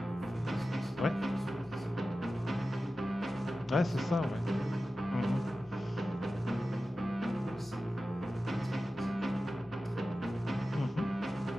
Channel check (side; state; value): both; normal; correlation 0.94